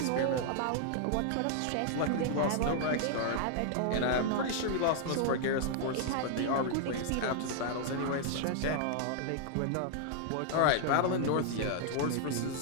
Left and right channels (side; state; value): both; different; correlation 0.00